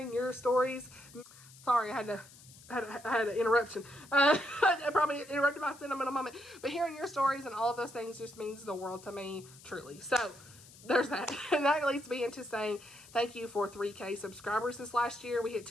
your stories. Sorry, I had an interruption. I probably interrupted my sentimental moment. But hearing your stories and all of those things just means the world to me, truly. So there's that. And that leads me into saying thank you for 3K subscribers this last year. We hit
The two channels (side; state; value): left; noise; hiss, 21 dB below the sound